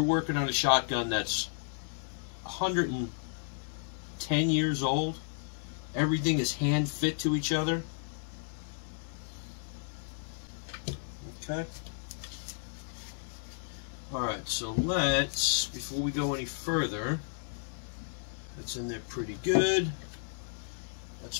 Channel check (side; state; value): right; silent; 56 dB below the other